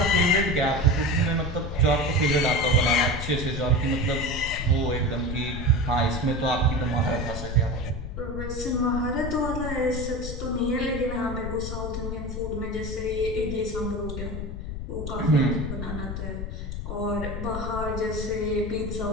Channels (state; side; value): noise; left; rumble, 6 dB below the sound